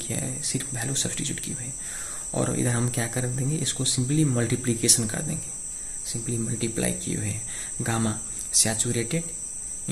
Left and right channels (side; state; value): both; identical; correlation 1.00